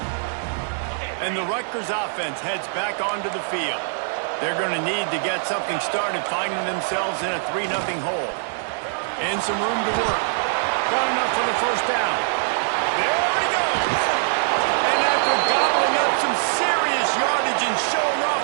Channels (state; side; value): silent; left; digital silence